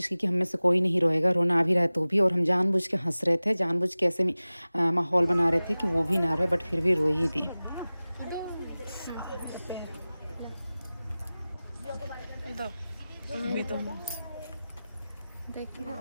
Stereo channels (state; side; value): inverted; both; correlation -0.97